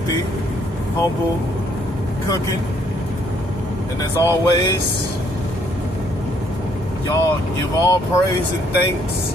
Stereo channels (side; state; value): both; normal; correlation 0.67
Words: Humble Cooking. And as always, y'all give all praise and thanks